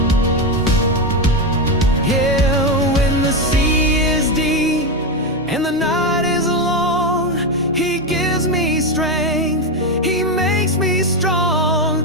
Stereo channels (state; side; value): normal; both; correlation 0.11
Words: Yeah, when the sea is deep and the night is long, He gives me strength, He makes me